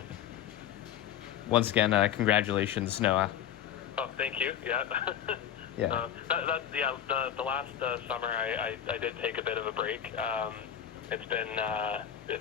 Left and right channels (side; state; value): right; quieter; 9.8 dB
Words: Once again, congratulations, Noah. Oh, thank you. Yeah. Yeah. The last summer, I did take a bit of a break. It's